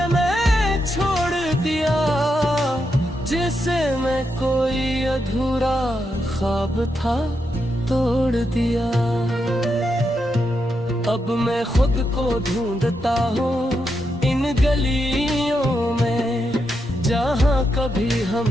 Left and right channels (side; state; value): both; normal; correlation 0.84